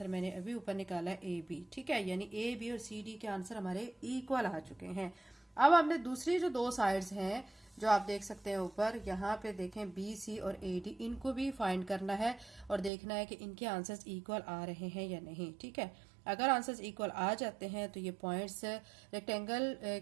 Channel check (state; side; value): drops out; left; at 12.9 s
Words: मैंने अभी ऊपर निकाला ए बी, ठीक है, यानी ए बी और सी डी के आंसर हमारे इक्वल आ चुके हैं। अब हमने दूसरी जो दो साइड्स हैं जो आप देख सकते हैं ऊपर, यहाँ पे देखें बी सी और ए डी, इनको भी फाइंड करना है और देखना है कि इनके आंसर्स इक्वल आ रहे हैं या नहीं। ठीक है, अगर आंसर्स इक्वल आ जाते हैं तो ये पॉइंट्स रेक्टेंगल